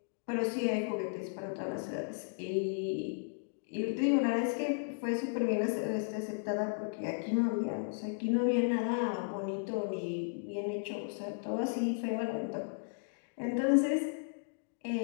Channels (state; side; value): silent; right; digital silence